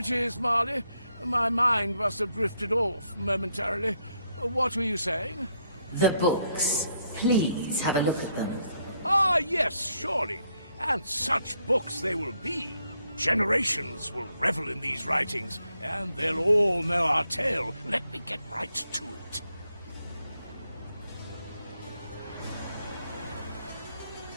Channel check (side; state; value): both; inverted; correlation -0.75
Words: Marley. My mind must have drifted off momentarily. What were you saying? The books. Please have a look at them. Ah, yes, surely. And such books they will be. Generations will revel in these writings, and they'll all know our tale. Let me get right to it.